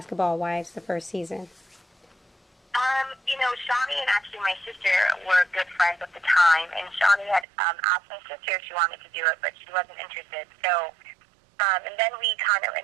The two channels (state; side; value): drops out; left; at 7.5 s